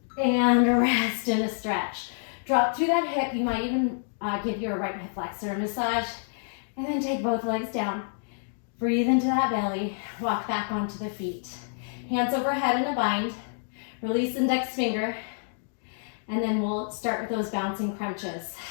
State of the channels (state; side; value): silent; right; digital silence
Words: And rest and a stretch. Drop through that hip. You might even give your right hip flexor a massage. And then take both legs down. Breathe into that belly. Walk back onto the feet. Hands overhead in a bind. Release index finger. And then we'll start with those bouncing crunches.